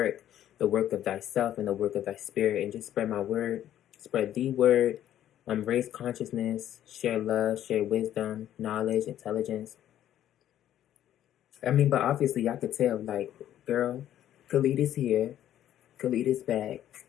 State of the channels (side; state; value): right; quieter; 11.6 dB